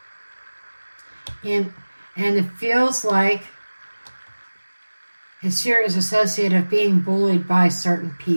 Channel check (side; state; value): both; inverted; correlation -1.00